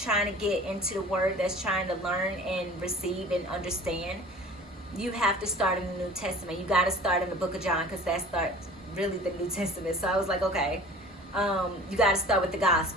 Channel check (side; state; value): both; normal; correlation 0.44